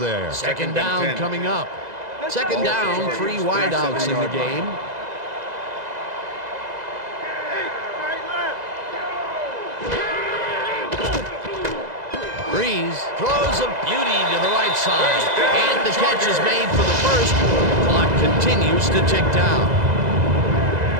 Second down coming up. Second down, 3 wideouts in the game. Breeze throws a beauty to the right side, and the catch is made for the first. The clock continues to tick down.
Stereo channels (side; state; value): left; late; 2.0 ms